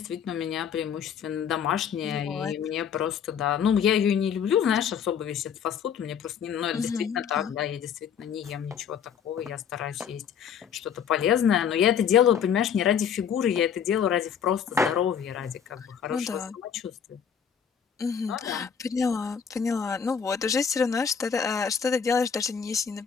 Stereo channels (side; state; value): right; quieter; 7.6 dB